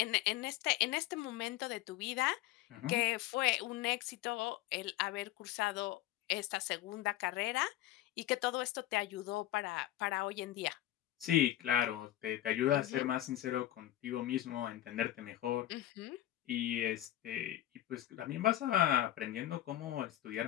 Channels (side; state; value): right; quieter; 13.9 dB